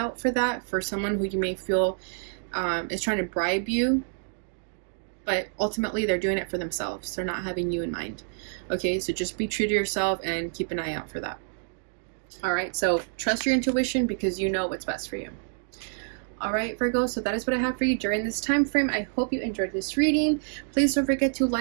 for that, for someone who you may feel is trying to bribe you, but ultimately they're doing it for themselves. They're not having you in mind. Okay, so just be true to yourself and keep an eye out for that. All right, so trust your intuition because you know what's best for you. All right, Virgo, so that is what I have for you during this time frame. I hope you enjoyed this reading. Please don't forget to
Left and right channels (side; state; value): left; silent; digital silence